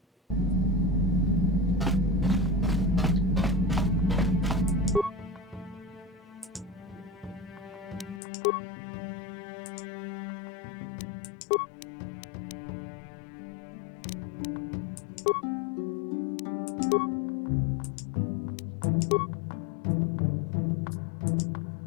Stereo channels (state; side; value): drops out; right; at 8.2 s